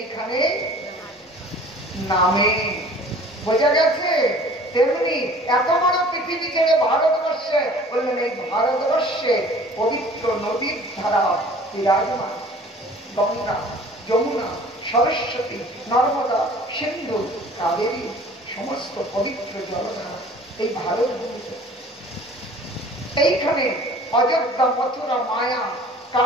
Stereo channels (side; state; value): both; normal; correlation 0.48